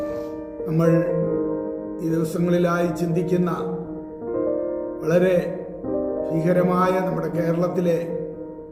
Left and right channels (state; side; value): identical; both; correlation 1.00